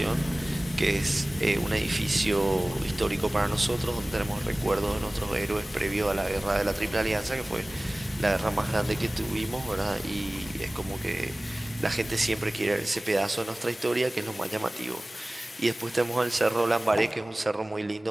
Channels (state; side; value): normal; both; correlation 0.98